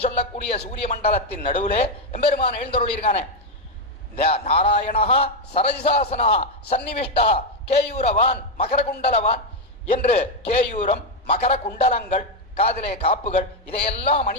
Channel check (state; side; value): normal; both; correlation 0.04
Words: சொல்லக்கூடிய சூரிய மண்டலத்தின் நடுவுலே எம்பெருமான் எழுந்தருளிருக்கானே. நாராயணா சரஜிசாசனா சன்னிவிஷ்டா கேயூரவான் மகரகுண்டலவான் என்று கேயூரம் மகர குண்டலங்கள் காதிலே காப்புகள் இதையெல்லாம்